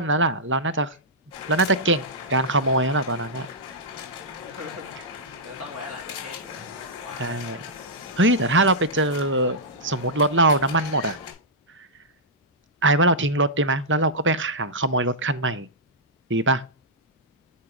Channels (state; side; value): normal; both; correlation -0.11